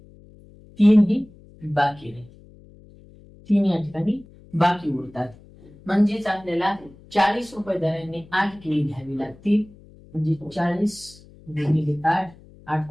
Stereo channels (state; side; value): noise; left; hum, 23 dB below the sound